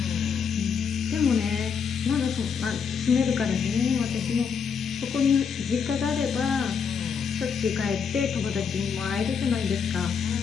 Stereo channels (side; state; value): right; quieter; 6.5 dB